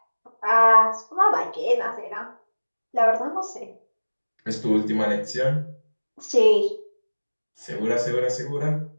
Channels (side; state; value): both; inverted; correlation -1.00